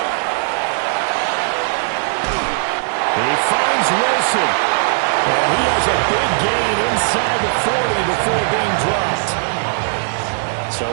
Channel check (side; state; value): left; silent; digital silence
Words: He finds Wilson. And he has a big gain So